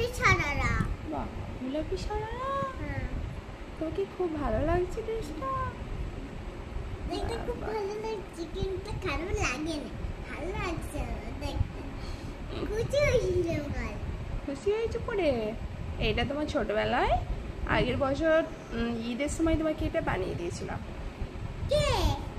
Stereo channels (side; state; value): both; identical; correlation 1.00